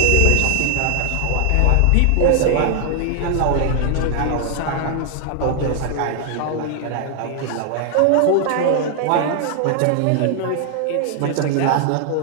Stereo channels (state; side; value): different; both; correlation 0.00